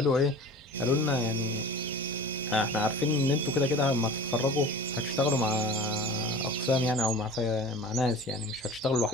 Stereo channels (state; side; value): normal; both; correlation 0.39